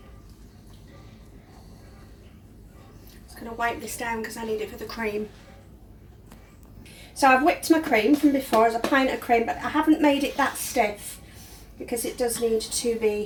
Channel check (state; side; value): identical; both; correlation 1.00